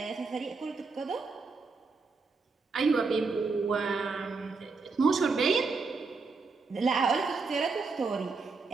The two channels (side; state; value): left; quieter; 4.3 dB